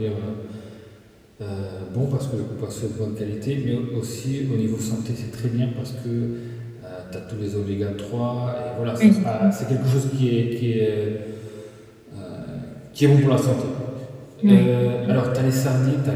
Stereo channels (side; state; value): both; identical; correlation 1.00